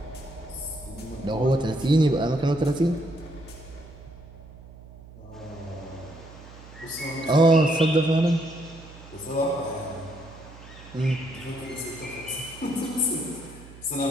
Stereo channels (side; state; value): right; noise; hum, 18 dB below the sound